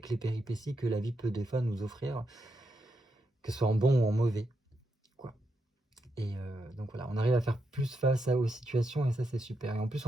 les péripéties que la vie peut des fois nous offrir, que ce soit en bon ou en mauvais, quoi. Et donc voilà, on arrive à faire plus face aux situations, et ça, c'est super. Et en plus,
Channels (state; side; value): normal; both; correlation 0.83